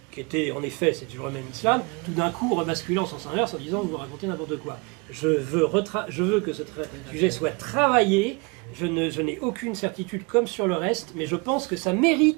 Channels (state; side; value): quieter; left; 29.9 dB